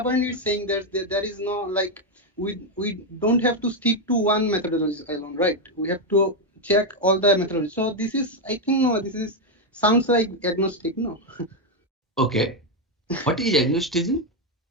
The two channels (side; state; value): both; normal; correlation 0.04